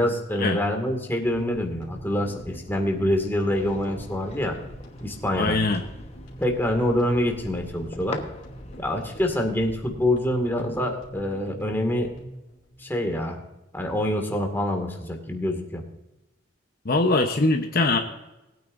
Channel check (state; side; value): normal; both; correlation 0.62